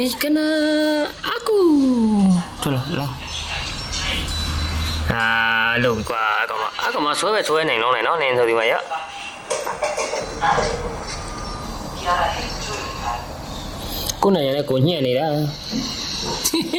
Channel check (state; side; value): identical; both; correlation 1.00